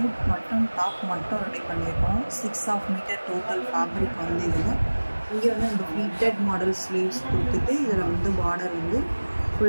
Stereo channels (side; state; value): both; inverted; correlation -1.00